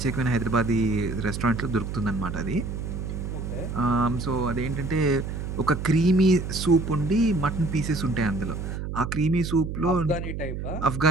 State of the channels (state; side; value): noise; right; hum, 5 dB below the sound